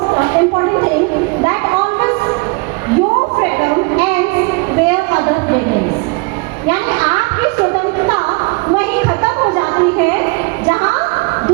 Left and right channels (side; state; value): left; quieter; 28.4 dB